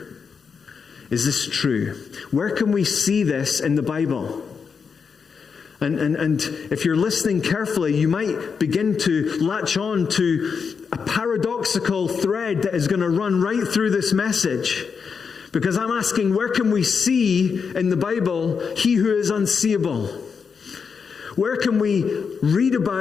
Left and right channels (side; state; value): right; quieter; 5.9 dB